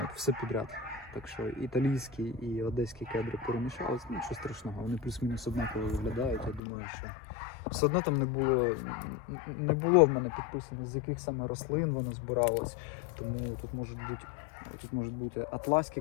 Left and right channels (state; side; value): drops out; right; at 6.6 s